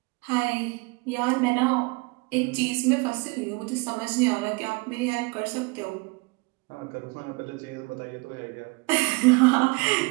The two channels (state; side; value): quieter; left; 27.0 dB